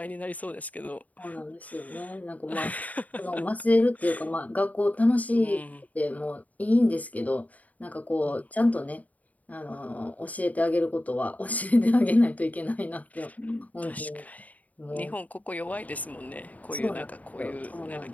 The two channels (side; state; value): right; late; 0.073 ms